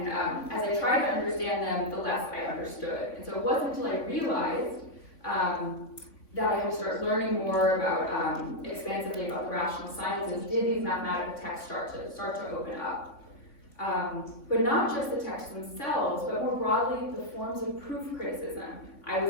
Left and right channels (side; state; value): right; late; 3.6 ms